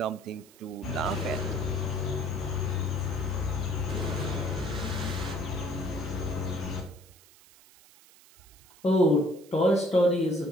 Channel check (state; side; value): noise; right; hiss, 25 dB below the sound